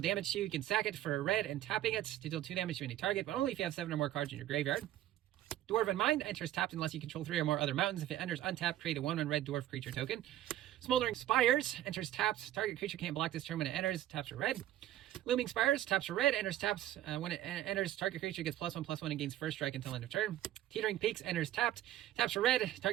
to you, you can sack it for a red and tapping it to deal 2 damage to any target, but only if you have 7 or more cards in your graveyard. Dwarven Mind, enters tapped unless you control 3 or more other mountains. If it enters untapped, create a 1/1 red dwarf creature token. Smoldering Spires, enters tapped. Target creature can't block this turn when it enters. Taps for red. Looming Spires, taps for red. Enters tapped. When it enters, target creature gets +1/+1 and gains first strike until end of turn. Teetering Peaks, enters tapped. Taps for red.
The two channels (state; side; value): quieter; left; 13.1 dB